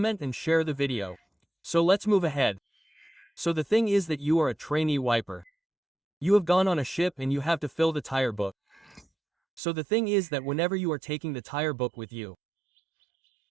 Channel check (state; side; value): drops out; left; at 9.6 s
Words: and share the video. So let's move ahead. So the thing is that you are a trainee wiper. You have gone on a ship and you have to fill the tire book. So the thing is that whenever you are taking the tire book with you,